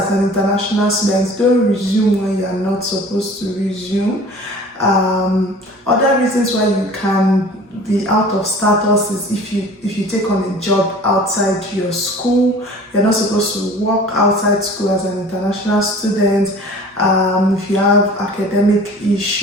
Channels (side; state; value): both; normal; correlation 0.45